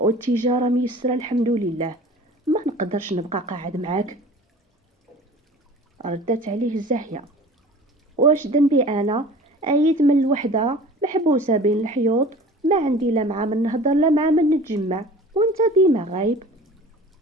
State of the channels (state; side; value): normal; both; correlation 0.42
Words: ميسره الحمد لله، ما نقدرش نبقى قاعد معاك. ردت عليه الزاهيه: واش ذنبي انا؟ ايد من الوحده محبوسه بين الحيوط، ما عندي لا مع من نهضر لا مع من نتجمع، وانت ديما غايب.